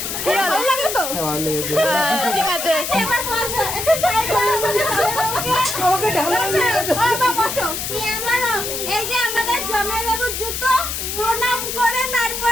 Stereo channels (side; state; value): left; noise; hiss, 4 dB below the sound